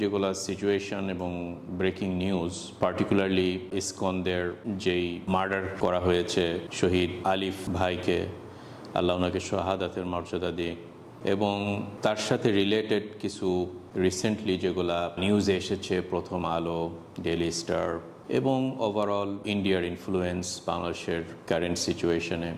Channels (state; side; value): identical; both; correlation 1.00